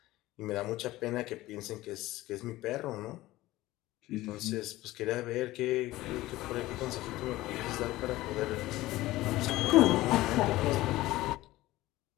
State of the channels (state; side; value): quieter; right; 17.3 dB